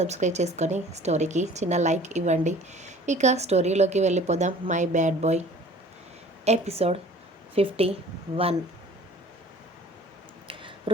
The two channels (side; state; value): both; normal; correlation 0.48